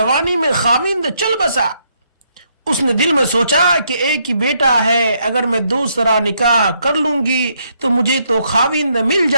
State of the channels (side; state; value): both; inverted; correlation -0.74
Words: میں خاوند چل بسا۔ اس نے دل میں سوچا کہ ایک ہی بیٹا ہے، اگر میں دوسرا نکاح کر لوں گی تو مجھے تو خاوند مل